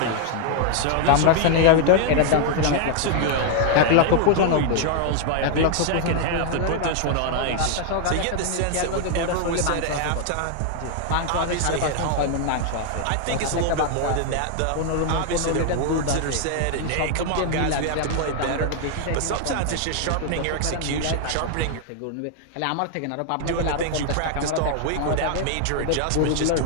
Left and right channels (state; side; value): different; both; correlation 0.00